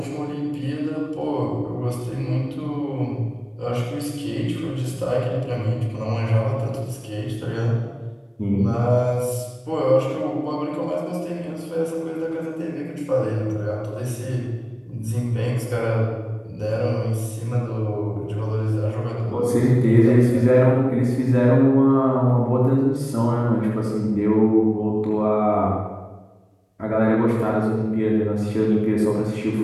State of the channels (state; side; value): identical; both; correlation 1.00